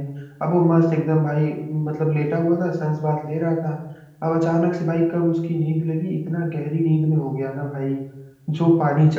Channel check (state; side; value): identical; both; correlation 1.00